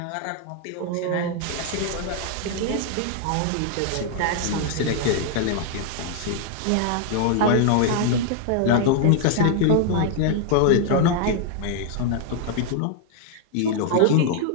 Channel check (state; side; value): different; both; correlation 0.00